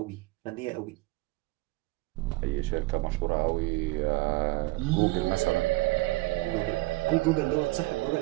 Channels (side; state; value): left; quieter; 21.5 dB